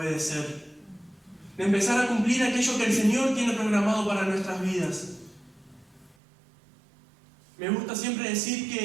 De empezar a cumplir aquello que el Señor tiene programado para nuestras vidas. Me gusta siempre decir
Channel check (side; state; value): left; drops out; at 6.2 s